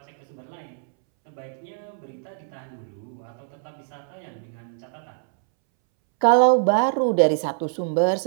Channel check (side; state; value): left; silent; 62 dB below the other